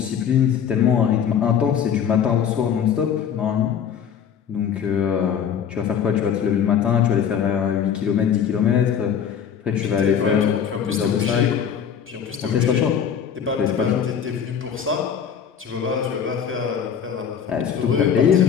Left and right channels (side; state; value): right; quieter; 7.9 dB